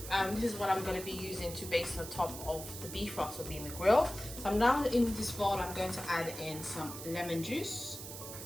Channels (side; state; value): right; noise; hiss, 10 dB below the sound